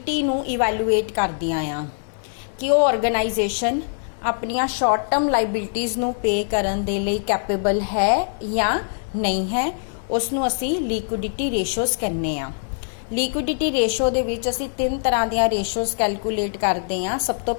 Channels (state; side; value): silent; right; 56 dB below the other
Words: नू इवैलूएट करदियां आ कि वो ऑर्गेनाइजेशन अपनियां शॉर्ट टर्म लाइबिलिटीज़ नू पे करन दे लई कैपेबल है या नहीं है। उसनू असी लिक्विडिटी रेशोज़ कहने आ। लिक्विडिटी रेशो दे विच असी तीन तरह दियां रेशोज़ कैलकुलेट करते हैं। सब तो